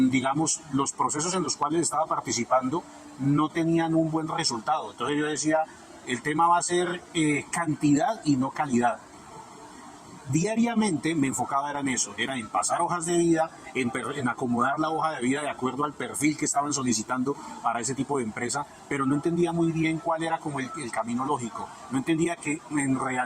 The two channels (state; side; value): identical; both; correlation 1.00